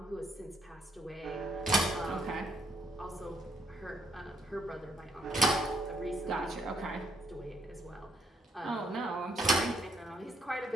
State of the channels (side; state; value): both; normal; correlation 0.71